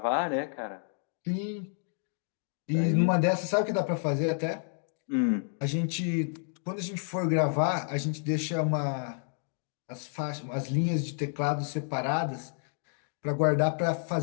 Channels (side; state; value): right; silent; 58 dB below the other